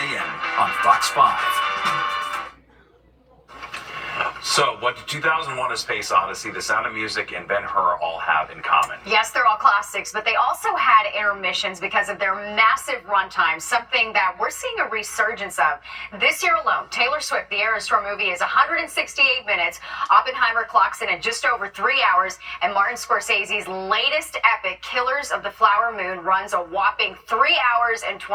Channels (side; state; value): both; identical; correlation 1.00